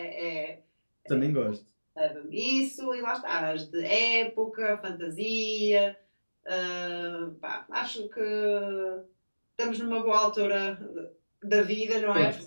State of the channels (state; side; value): inverted; both; correlation -1.00